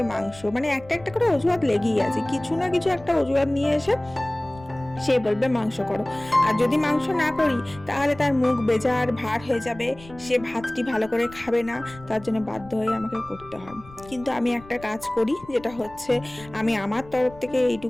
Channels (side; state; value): left; noise; rumble, 20 dB below the sound